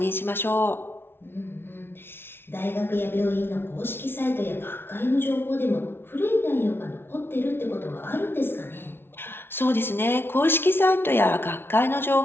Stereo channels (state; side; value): late; right; 0.11 ms